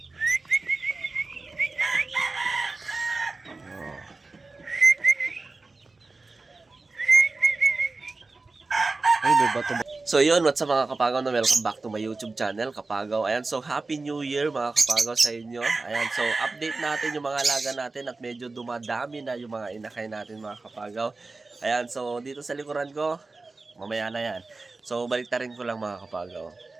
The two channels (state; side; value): quieter; left; 3.6 dB